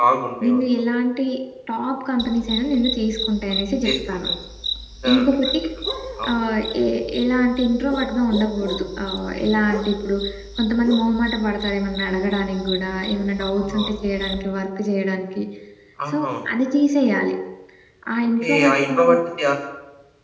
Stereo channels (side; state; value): both; identical; correlation 1.00